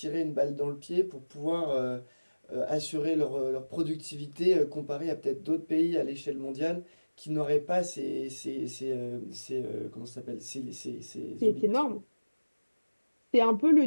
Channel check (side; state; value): both; inverted; correlation -1.00